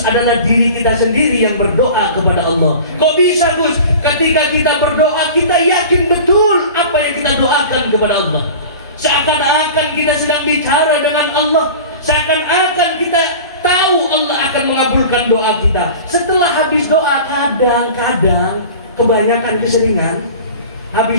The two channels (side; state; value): both; inverted; correlation -0.38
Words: diri kita sendiri yang berdoa kepada Allah. Kok bisa, Gus? Ketika kita berdoa, kita yakin betul apa yang kita doakan kepada Allah. Seakan-akan kita sedang bicara dengan Allah, seakan-akan kita tahu Allah akan mengabulkan doa kita. Setelah habis doa, kadang-kadang, kebanyakan keseringan,